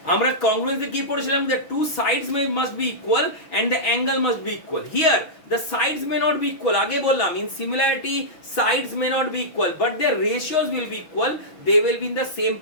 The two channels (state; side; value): late; right; 6.2 ms